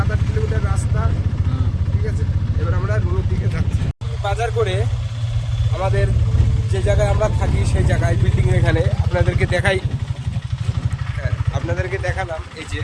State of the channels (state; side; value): identical; both; correlation 1.00